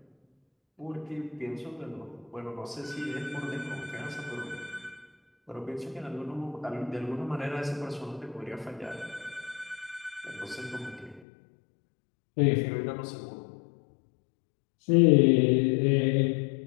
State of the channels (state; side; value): drops out; right; at 11.2 s